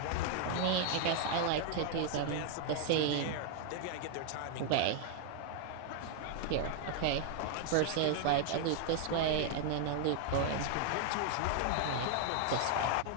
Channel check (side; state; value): both; different; correlation 0.00